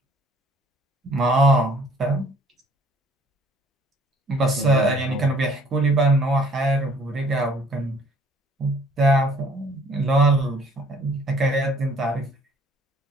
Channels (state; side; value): normal; both; correlation 0.58